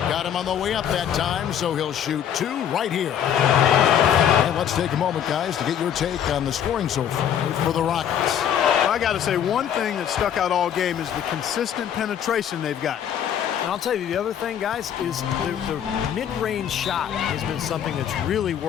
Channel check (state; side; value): quieter; right; 9.3 dB